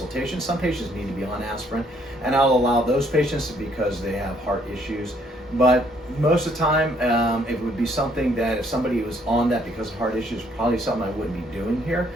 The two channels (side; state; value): both; normal; correlation 0.66